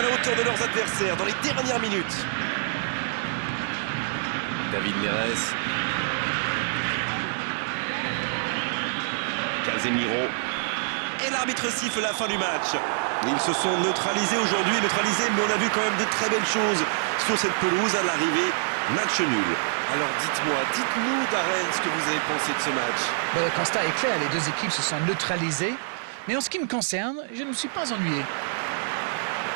la hauteur de leurs adversaires dans les dernières minutes. David Neres. Casemiro. Et l'arbitre siffle la fin du match. Ils se sont neutralisés aujourd'hui, mais on a vu quand même de très belles choses sur cette pelouse à l'arrivée. Match nul. Alors dites-nous Darren ce que vous avez pensé de ce match. Ben, le constat est clair, les deux équipes se sont neutralisées. Mais en ce qui me concerne, je ne me suis pas ennuyé.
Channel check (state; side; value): silent; left; digital silence